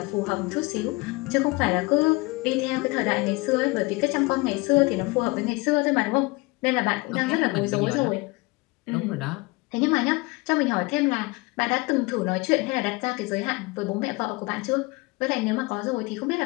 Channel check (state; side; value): quieter; right; 24.1 dB